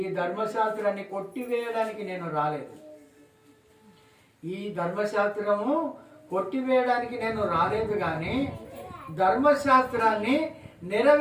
ధర్మశాస్త్రాన్ని కొట్టివేయడానికి నేను రాలేదు. ఈ ధర్మశాస్త్రము కొట్టివేయడానికి నేను రాలేదు, కానీ ధర్మశాస్త్రాన్ని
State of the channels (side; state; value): both; identical; correlation 1.00